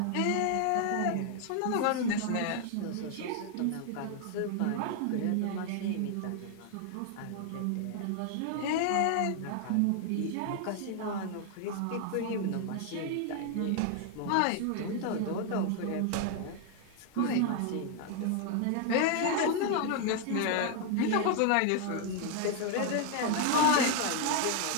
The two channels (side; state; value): both; different; correlation 0.00